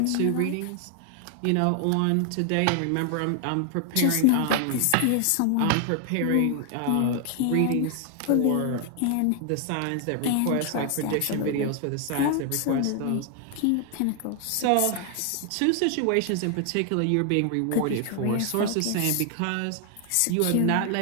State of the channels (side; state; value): both; different; correlation 0.00